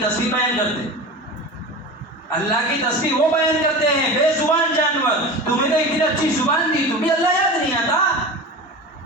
تسبیح بیان کرتے ہیں. اللہ کی تسبیح وہ بیان کرتے ہیں بے زبان جانور. تمہیں تو اتنی اچھی زبان دی، تمہیں اللہ یاد نہیں آتا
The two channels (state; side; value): normal; both; correlation 0.31